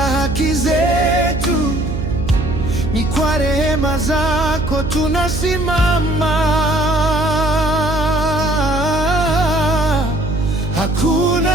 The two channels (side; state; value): right; noise; hum, 4 dB below the sound